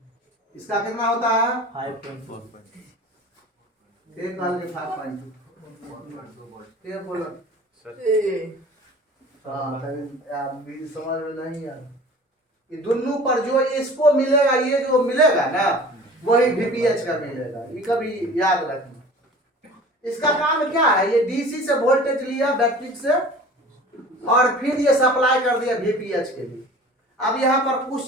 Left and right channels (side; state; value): both; normal; correlation 0.42